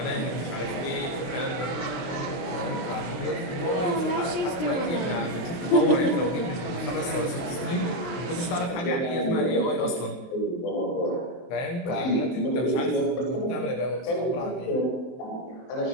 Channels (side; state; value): right; late; 23 ms